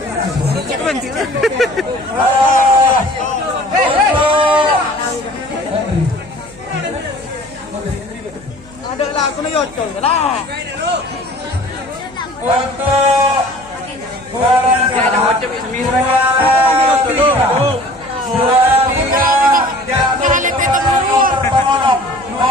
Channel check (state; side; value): noise; right; hum, 23 dB below the sound